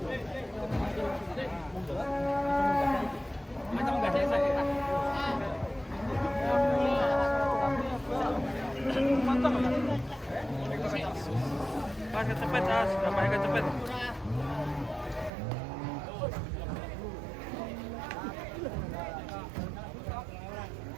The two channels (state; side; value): drops out; left; at 15.3 s